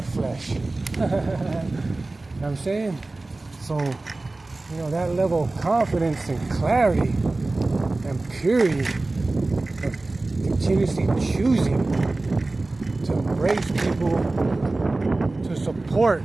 flesh. You know what I'm saying? So, that level of confidence and clarity and purity of continuously choosing to embrace people, to support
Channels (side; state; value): left; quieter; 3.1 dB